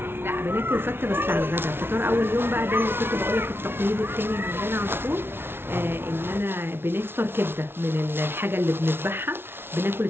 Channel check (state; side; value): late; left; 0.11 ms